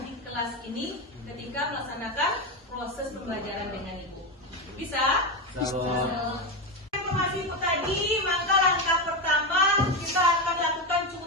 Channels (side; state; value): both; normal; correlation 0.13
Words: di kelas ini ketika melaksanakan proses pembelajaran dengan Ibu. Bisa? Informasi itu tadi, maka langkah pertama kita akan lakukan